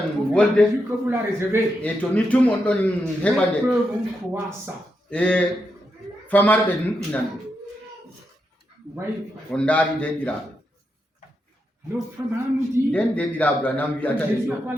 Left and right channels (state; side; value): normal; both; correlation 0.84